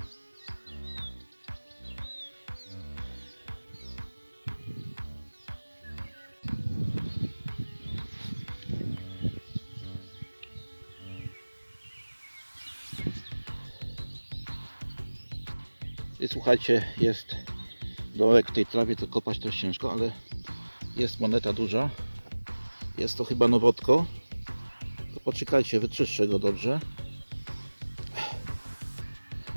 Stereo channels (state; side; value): inverted; both; correlation -1.00